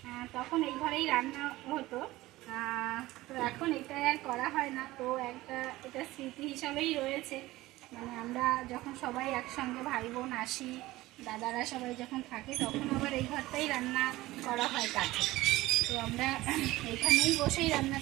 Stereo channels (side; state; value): left; quieter; 18.0 dB